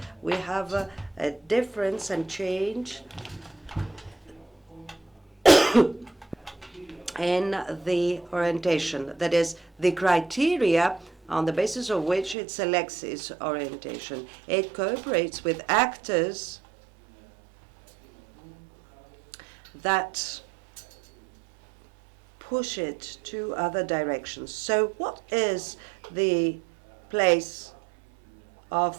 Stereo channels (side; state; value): left; drops out; at 12.4 s